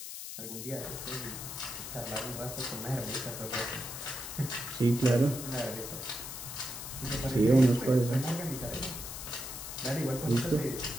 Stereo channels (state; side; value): noise; left; hiss, 8 dB below the sound